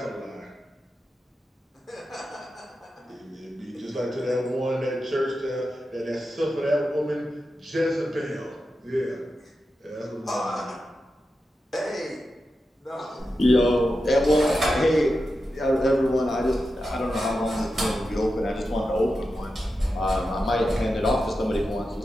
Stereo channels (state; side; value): normal; both; correlation 0.90